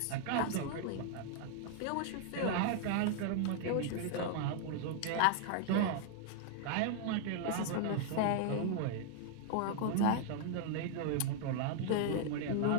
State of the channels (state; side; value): different; both; correlation 0.00